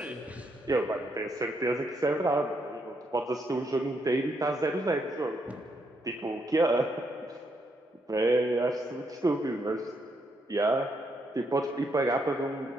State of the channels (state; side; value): normal; both; correlation 0.77